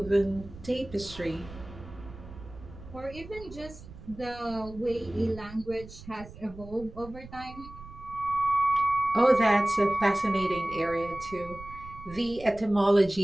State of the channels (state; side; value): noise; right; rumble, 16 dB below the sound